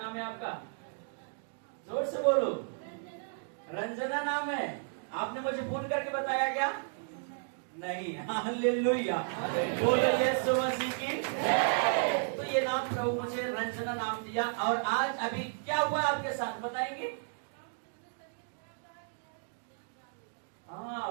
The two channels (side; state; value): left; silent; digital silence